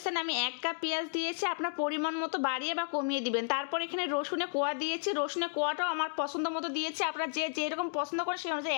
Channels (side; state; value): right; silent; digital silence